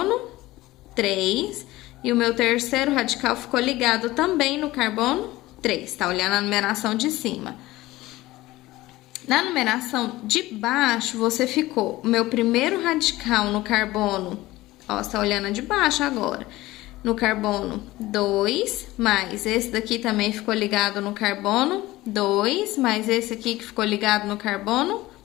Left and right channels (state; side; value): quieter; right; 18.0 dB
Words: 3. E o meu terceiro radical ficou ligado também no carbono 3. Tá olhando a numeração de cima. Na numeração de baixo, você ficou o meu primeiro radical no carbono, ó, você tá olhando a de baixo agora, no carbono 2, mais esse daqui também ficou ligado no carbono 2, mais esse aqui que ficou ligado no carbono